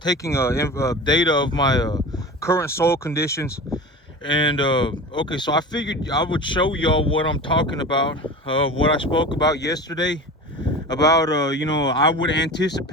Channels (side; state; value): both; normal; correlation 0.33